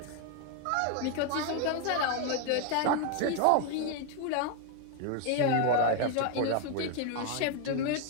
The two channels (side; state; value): both; different; correlation 0.00